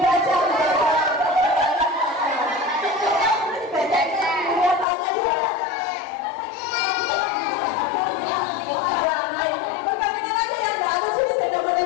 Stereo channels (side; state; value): right; drops out; at 4.9 s